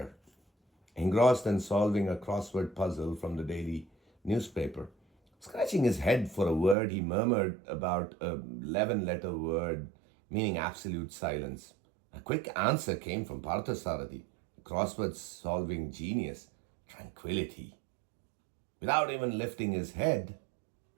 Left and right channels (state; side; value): drops out; left; at 6.8 s